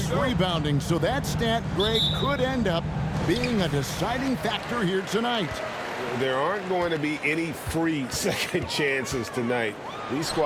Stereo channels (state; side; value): identical; both; correlation 1.00